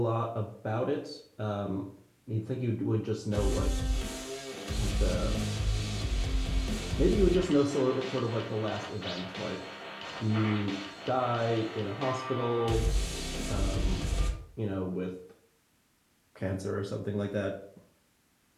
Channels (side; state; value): both; identical; correlation 1.00